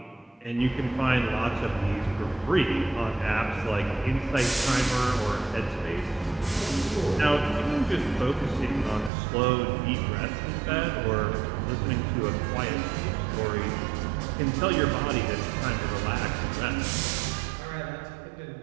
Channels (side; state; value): left; drops out; at 9.1 s